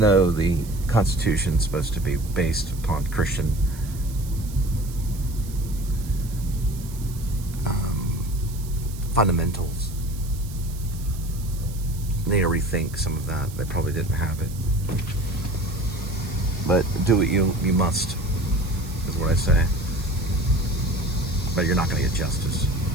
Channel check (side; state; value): right; noise; hiss, 17 dB below the sound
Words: though the Constitution is supposed to be based upon Christian fundamentals. They need to rethink some of that. They probably didn't have it. But do what you must, is what I say. But you're not going to get justice.